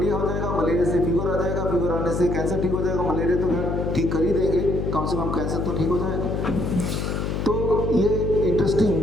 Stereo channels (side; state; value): left; noise; hum, 1 dB below the sound